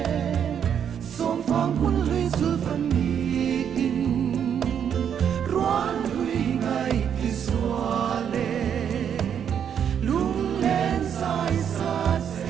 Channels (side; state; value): left; quieter; 8.4 dB